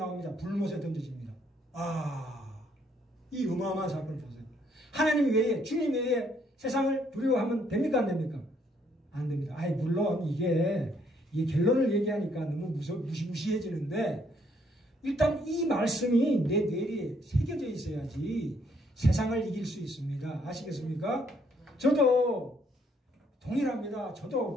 불못에 던져집니다. 이 어마어마한 사건을 보세요. 하나님 외에, 주님 외에 세상을 두려워하면 됩니까? 안 됩니까? 안 됩니다. 물론 이게 결론을 얘기하니까 너무 무시무시해지는데, 일단 이 말씀이 내 뇌리에 새겨져 있어야지 세상을 이길 수 있습니다. 아시겠습니까? 저도 동일합니다.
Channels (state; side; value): normal; both; correlation 0.69